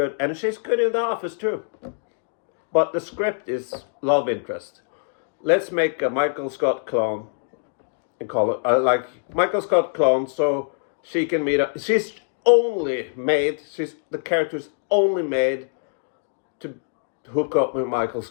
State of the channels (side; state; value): right; silent; digital silence